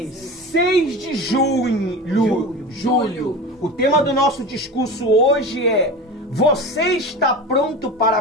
de julho. O tema do nosso discurso hoje é: você está pronto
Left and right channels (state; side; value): normal; both; correlation 0.30